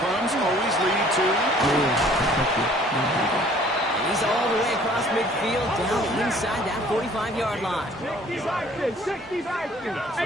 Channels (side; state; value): both; normal; correlation 0.55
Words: crumbs always lead to... And he's all the way across midfield, down inside that 45-yard line. 60 Vikings,